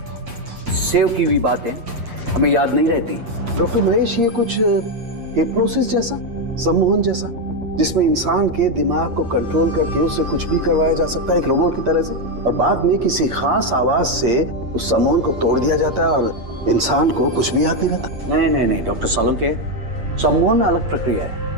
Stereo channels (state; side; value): late; left; 8.6 ms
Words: सेव की हुई बातें हमें याद नहीं रहती। डॉक्टर महेश, ये कुछ हिप्नोसिस जैसा, सम्मोहन जैसा, जिसमें इंसान के दिमाग को कंट्रोल करके उससे कुछ भी करवाया जा सकता है एक रोबोट की तरह से, और बाद में किसी खास आवाज से उस सम्मोहन को तोड़ दिया जाता है और इंसान को कुछ भी याद नहीं रहता। नहीं डॉक्टर सालुंके, सम्मोहन अलग प्रक्रिया है।